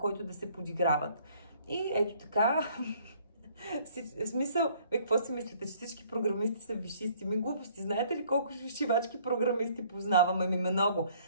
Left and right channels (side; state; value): both; inverted; correlation -0.60